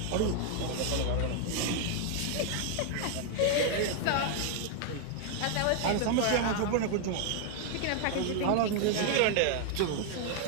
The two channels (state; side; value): different; both; correlation 0.00